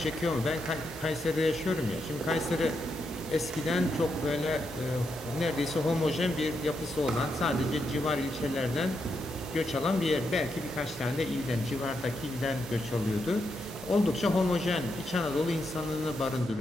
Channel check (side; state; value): both; normal; correlation 0.82